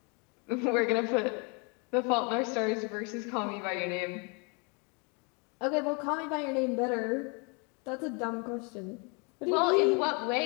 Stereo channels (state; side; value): quieter; right; 33.2 dB